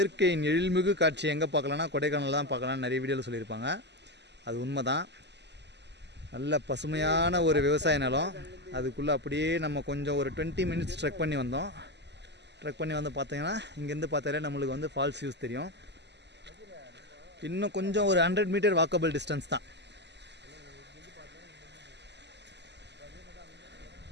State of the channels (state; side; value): late; left; 0.50 ms